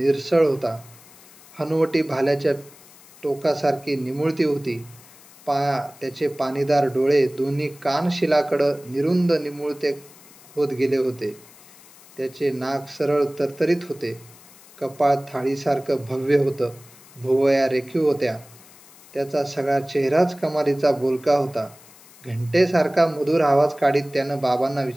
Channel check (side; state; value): left; noise; hiss, 23 dB below the sound